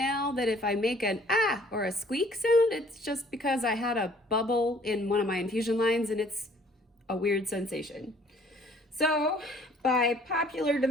that if I make an ah or a squeak sound, it's just because I had a bubble in one of my infusion lines and it's a weird sensation. So, by popular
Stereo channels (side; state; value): both; normal; correlation 0.57